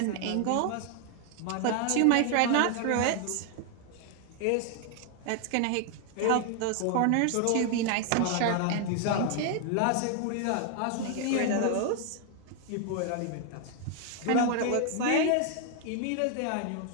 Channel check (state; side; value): different; both; correlation 0.00